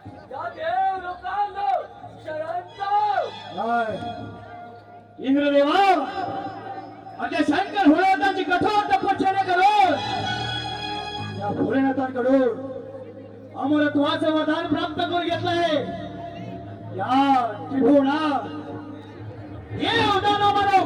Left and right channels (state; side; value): identical; both; correlation 1.00